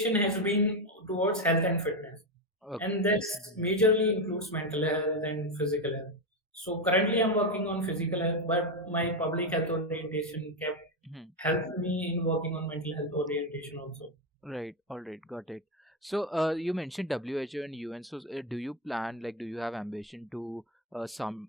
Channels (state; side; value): normal; both; correlation 0.10